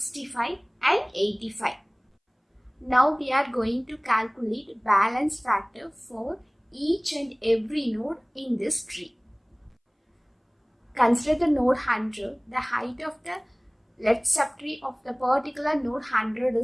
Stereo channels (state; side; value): identical; both; correlation 1.00